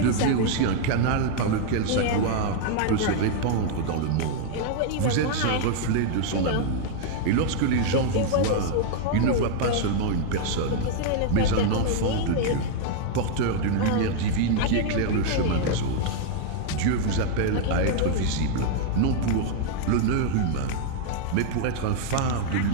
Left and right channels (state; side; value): different; both; correlation 0.00